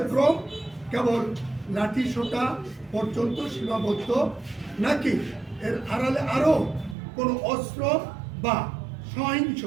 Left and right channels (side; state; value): left; drops out; at 7.0 s